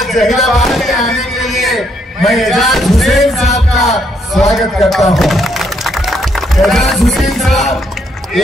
जहीराबाद में आने के लिए मैं एजाज हुसैन साहब का स्वागत करता हूँ। एजाज हुसैन साहब ये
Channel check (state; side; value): normal; both; correlation 0.73